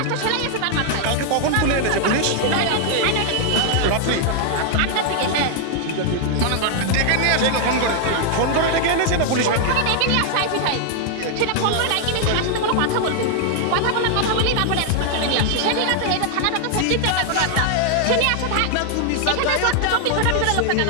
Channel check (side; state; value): both; different; correlation 0.00